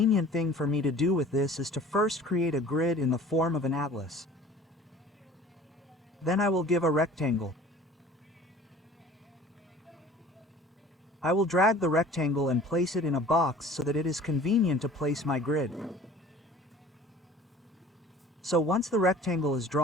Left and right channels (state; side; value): normal; both; correlation 0.46